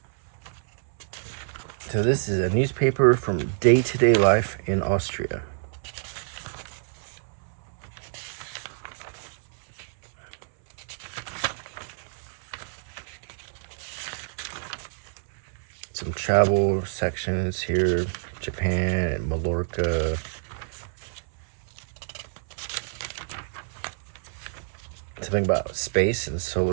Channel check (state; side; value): silent; left; 60 dB below the other